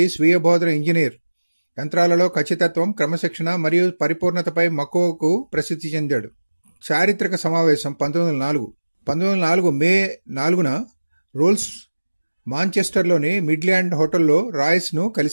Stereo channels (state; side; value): inverted; both; correlation -1.00